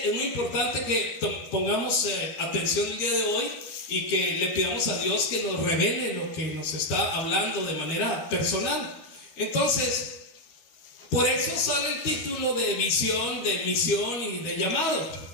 es muy importante que pongamos atención el día de hoy y que le pidamos a Dios que nos revele lo que nos está hablando de manera personal. Entonces, por eso sale el título de visión, de misión y de llamado,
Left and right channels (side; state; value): right; late; 13 ms